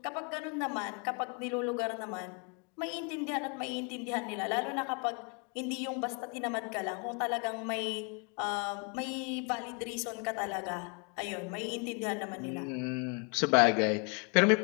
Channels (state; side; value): quieter; right; 35.5 dB